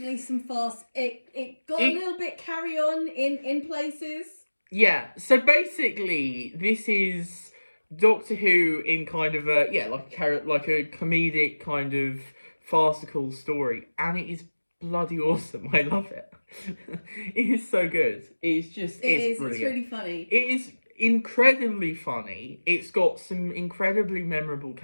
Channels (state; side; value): inverted; both; correlation -1.00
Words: some farce. It got a little bit carry on in places. Yeah, so basically this is Doctor Who in kind of a like a comedic kind of farcical story, and it is bloody awesome. I love it. It is so good. It's brilliant. It's really funny. It is incredibly funny. It's got some incredibly memorable